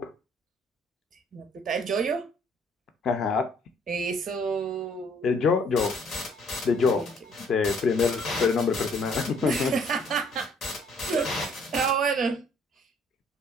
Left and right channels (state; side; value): normal; both; correlation 0.61